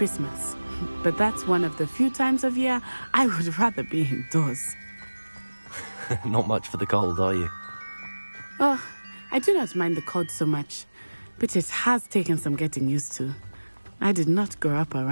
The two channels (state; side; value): inverted; both; correlation -1.00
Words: But that's one of the few times of year I would rather be indoors. Not much for the cold, are you? Oh, I do not mind the cold so much, but it has taken some getting used to. I did not grow up